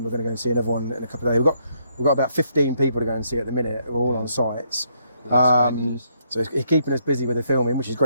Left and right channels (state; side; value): inverted; both; correlation -0.73